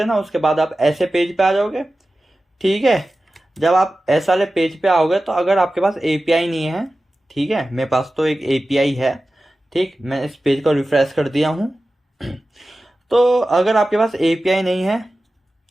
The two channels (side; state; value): both; normal; correlation 0.95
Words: उसके बाद आप ऐसे पेज पे आ जाओगे। ठीक है, जब आप ऐसा वाले पेज पे आओगे तो अगर आपके पास एपीआई नहीं है, ठीक है, मेरे पास तो एक एपीआई है। ठीक, मैं इस पेज को रिफ्रेश कर दिया हूँ। तो अगर आपके पास एपीआई नहीं है,